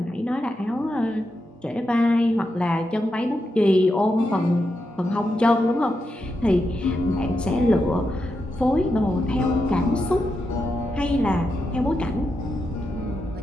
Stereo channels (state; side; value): normal; both; correlation 0.86